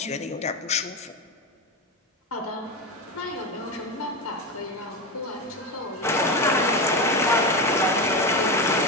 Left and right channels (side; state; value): both; normal; correlation 0.18